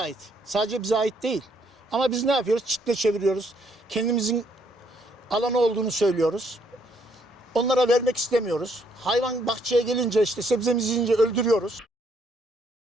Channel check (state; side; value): normal; both; correlation 0.70